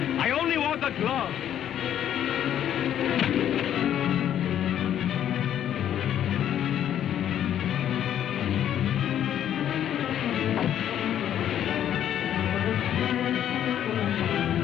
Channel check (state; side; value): quieter; right; 10.5 dB